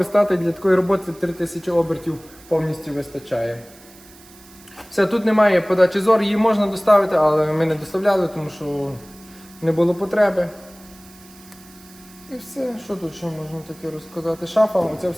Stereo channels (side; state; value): right; noise; hiss, 23 dB below the sound